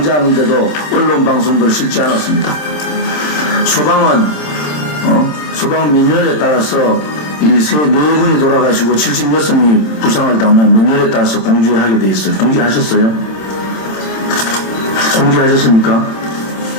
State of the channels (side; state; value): right; late; 27 ms